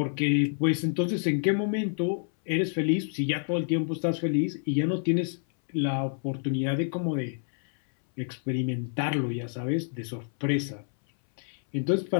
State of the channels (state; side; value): silent; right; 59 dB below the other